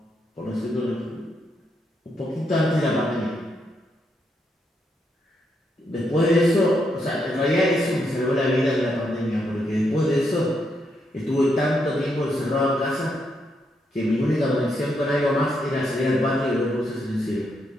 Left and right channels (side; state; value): both; normal; correlation 0.79